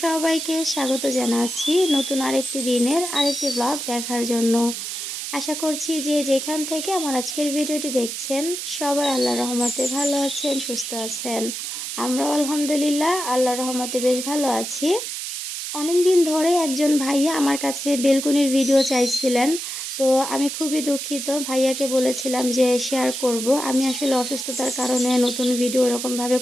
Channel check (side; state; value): right; noise; hiss, 5 dB below the sound